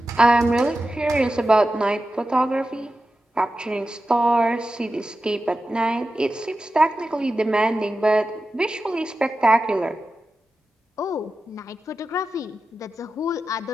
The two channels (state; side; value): normal; both; correlation 0.92